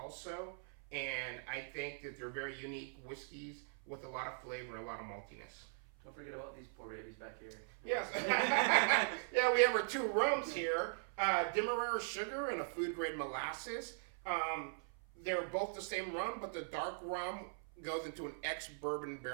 And I think that they're very unique whiskeys with a lot of flavor and a lot of maltiness. Don't forget about these poor babies back here. Yes. Yeah, we have our two rums here. Demerara sugar and a food grade molasses. They're both the same rum, but the dark rum goes into an ex-bourbon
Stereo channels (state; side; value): silent; left; 51 dB below the other